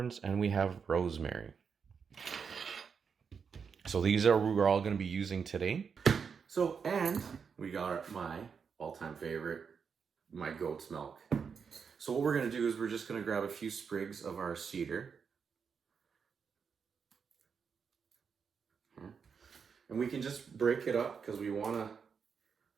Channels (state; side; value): quieter; left; 6.2 dB